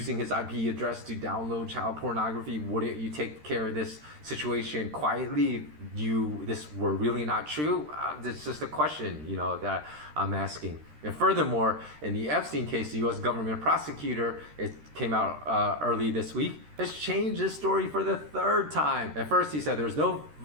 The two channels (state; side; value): late; left; 13 ms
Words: his IP address to download child pornography. Wouldn't you take care of this situation quietly if this were really not true? It's just a question, that I'm asking. And furthermore, in the Epstein case, the U.S. government prosecutor, it came out early this week, has changed his story for the third time. At first, he said there was no